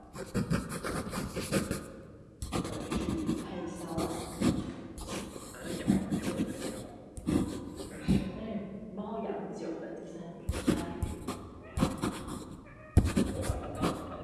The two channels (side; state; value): both; identical; correlation 1.00